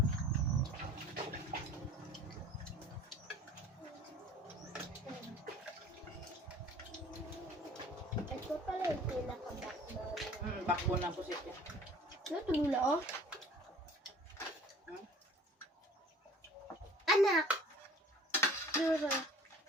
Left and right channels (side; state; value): both; normal; correlation 0.48